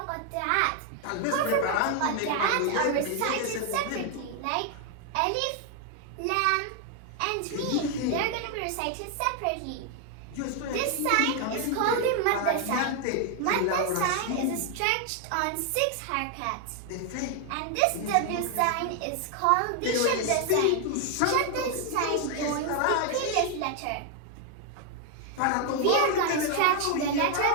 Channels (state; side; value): different; both; correlation 0.00